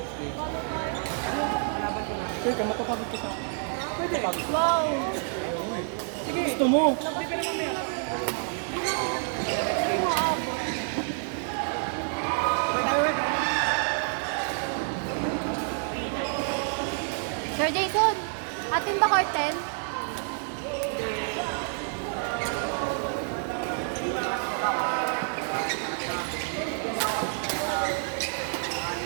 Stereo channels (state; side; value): silent; left; 57 dB below the other